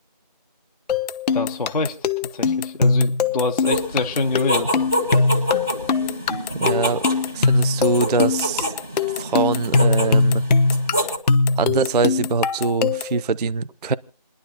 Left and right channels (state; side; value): inverted; both; correlation -0.49